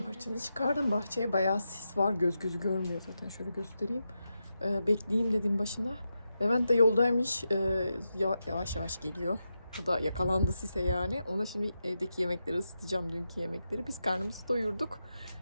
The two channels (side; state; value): both; inverted; correlation -0.88